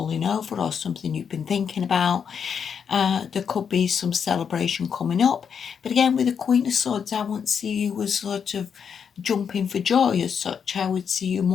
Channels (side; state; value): right; quieter; 7.1 dB